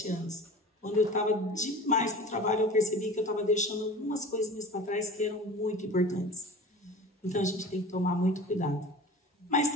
anos. Quando eu estava demais no trabalho, eu percebi que eu estava deixando algumas coisinhas para trás que eram muito importantes. Então, a gente tem que tomar muito cuidado. Mas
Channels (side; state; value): both; normal; correlation 0.38